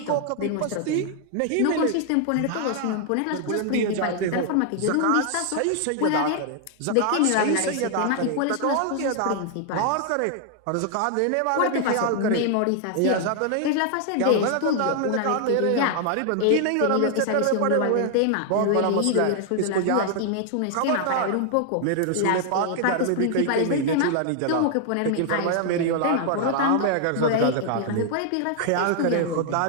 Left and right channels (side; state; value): both; different; correlation 0.00